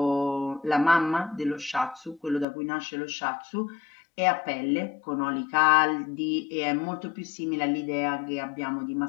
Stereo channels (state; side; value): drops out; right; at 2.5 s